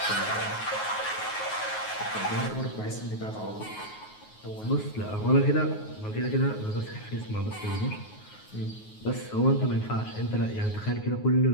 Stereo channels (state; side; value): late; right; 9.4 ms